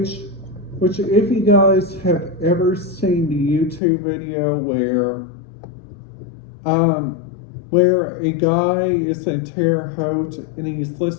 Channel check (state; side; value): drops out; right; at 3.8 s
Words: if you guys have ever seen the YouTube video where a guy is in Terre Haute and he's